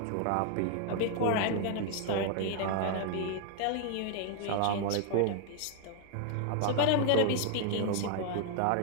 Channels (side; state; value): both; different; correlation 0.00